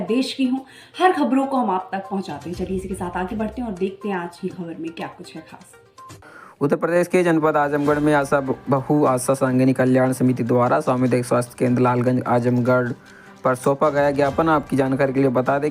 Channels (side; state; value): both; identical; correlation 1.00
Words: देश की हों। हर खबरों को हम आप तक पहुंचाते हैं। चलिए इसी के साथ आगे बढ़ते हैं और देखते हैं आज की खबर में क्या कुछ है खास। उत्तर प्रदेश के जनपद आजमगढ़ में आशा बहु आशा सांगिनी कल्याण समिति द्वारा सामुदायिक स्वास्थ्य केंद्र लालगंज आजमगढ़ पर सौंपा गया ज्ञापन। आपकी जानकारी के लिए बता दें